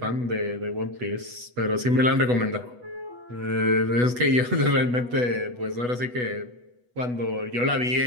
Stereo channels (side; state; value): left; late; 8.2 ms